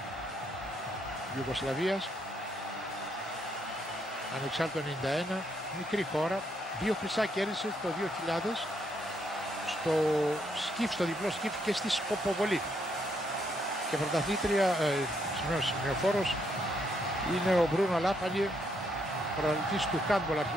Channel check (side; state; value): both; normal; correlation 0.74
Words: Ιουγκοσλαβίας. Ανεξάρτητο 91, μικρή χώρα. 2 χρυσά κέρδισε το 2000 στο σκιφ, στο διπλό σκιφ και στη σκοποβολή. Και πρωταθλήτρια, σημειοφόρος, είναι ο Μπρούνο Λάπαλι, πρωταθλητής του handball,